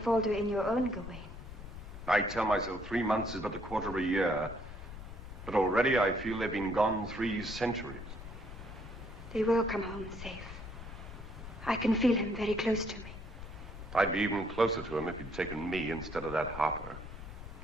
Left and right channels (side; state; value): left; noise; rumble, 12 dB below the sound